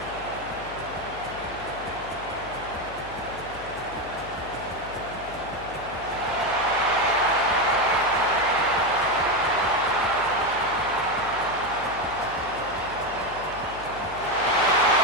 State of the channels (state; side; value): noise; left; hum, 16 dB below the sound